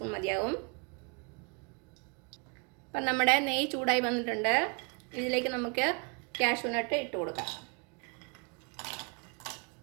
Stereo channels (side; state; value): left; quieter; 34.6 dB